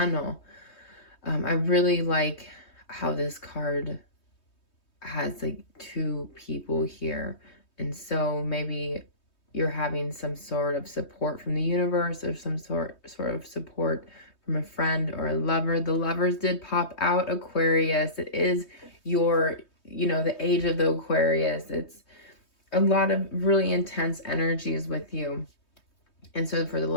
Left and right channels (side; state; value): right; late; 3.2 ms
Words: I really like how this card has like two people here. And so maybe you're having some sort of support from the universe, or some sort of support from a friend or a lover. The lovers did pop out, Aquarius. It is your, the age of the Aquarius. It's a lot of really intense energies with you. And so for the